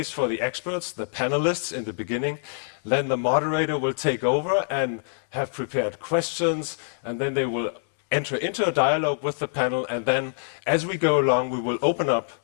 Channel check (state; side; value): silent; right; 62 dB below the other